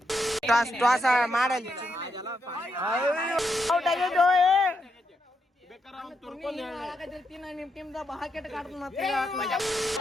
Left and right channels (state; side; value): normal; both; correlation 0.81